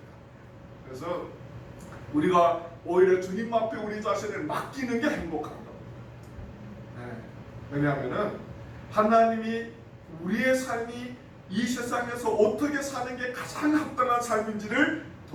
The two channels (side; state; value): both; identical; correlation 1.00